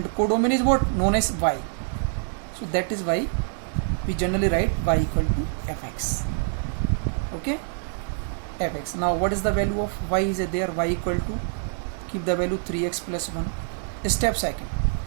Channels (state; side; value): silent; left; 61 dB below the other